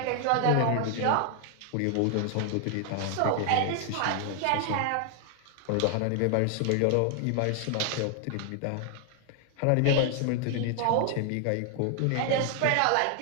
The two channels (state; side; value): different; both; correlation 0.00